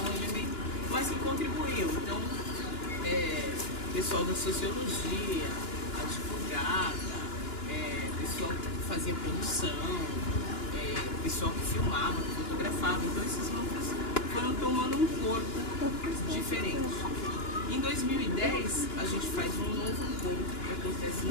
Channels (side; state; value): right; late; 2.9 ms